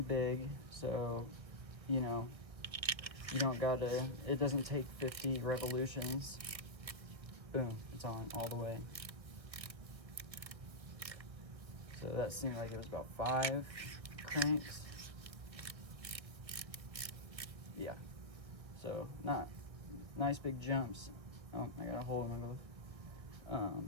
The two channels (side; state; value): left; late; 1.8 ms